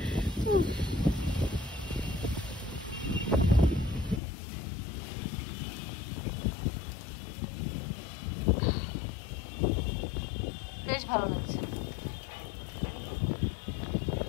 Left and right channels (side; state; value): right; drops out; at 4.2 s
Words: বেশ ভালো লাগছে।